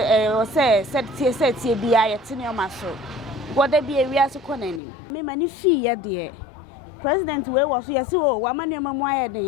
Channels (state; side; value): drops out; right; at 4.8 s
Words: bia yete ne o maso. Goda bi ewia so konani. Me mani fi ye de. President we wo so yesi o wa manu mamu aye den